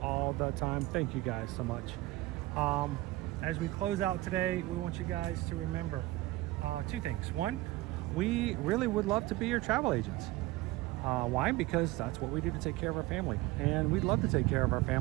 all the time. Thank you guys so much. As we close out today, we want you guys to remember 2 things. 1, we really would love to be your travel agents. Why? Because that's what we do to take care of our family. And we'd love to take care of our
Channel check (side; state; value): left; quieter; 18.9 dB